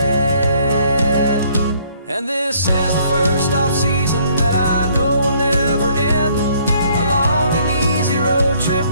And this is the first off-season that I know will never end. A long and easy road trip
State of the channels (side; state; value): both; inverted; correlation -0.63